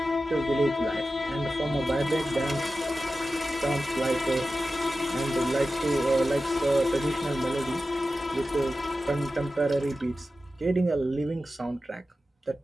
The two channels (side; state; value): both; normal; correlation 0.93